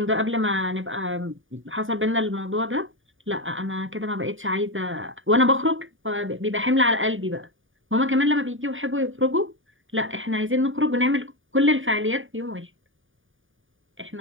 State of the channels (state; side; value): late; left; 0.57 ms